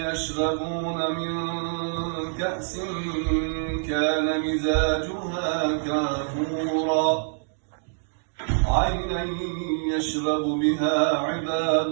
يشربون من كأس كان مزاجها كافورا عينا يشرب بها عباد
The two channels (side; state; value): left; silent; digital silence